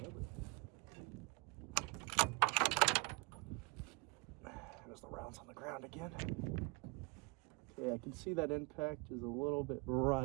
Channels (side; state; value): left; quieter; 26.9 dB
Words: There's the rounds on the ground again. Okay, I can see that impact is a little bit